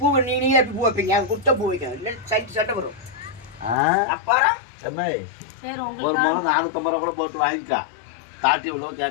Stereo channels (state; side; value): drops out; right; at 3.8 s